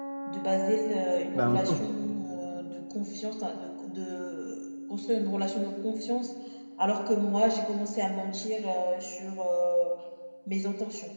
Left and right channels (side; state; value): both; inverted; correlation -1.00